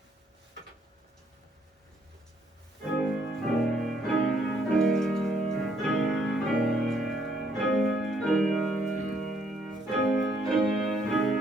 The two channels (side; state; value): both; normal; correlation 0.69